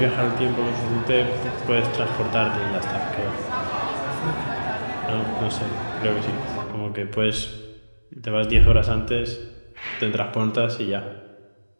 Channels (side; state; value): both; inverted; correlation -1.00